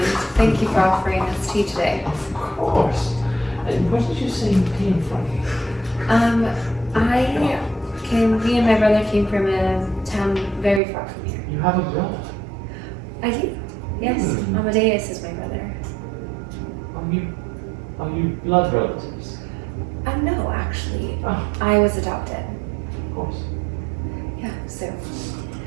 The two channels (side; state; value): left; drops out; at 10.8 s